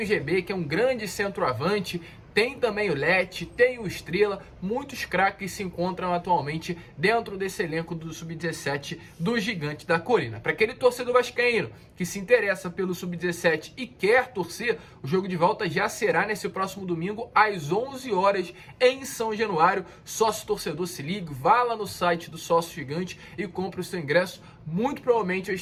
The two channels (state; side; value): identical; both; correlation 1.00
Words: o GB, que é um grande centroavante. Tem também o Lete, tem o Estrela, muitos craques se encontram atualmente dentro desse elenco do Sub-17 do Gigante da Colina. Para aquele torcedor vascaíno que se interessa pelo Sub-17 e quer torcer, o jogo de volta já será nesse próximo domingo às 11 horas em São Januário. Sócio torcedor, se ligue, vá lá no site do Sócio Gigante e compre o seu ingresso. Muito provavelmente eu